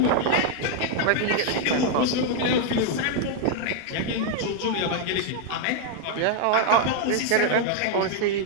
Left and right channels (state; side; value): different; both; correlation 0.00